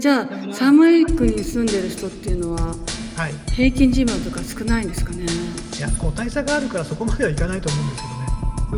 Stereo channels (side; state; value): both; identical; correlation 1.00